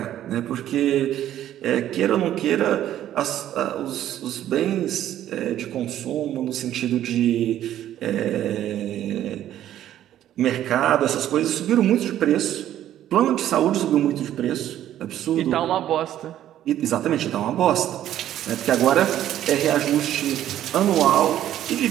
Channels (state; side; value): quieter; left; 12.0 dB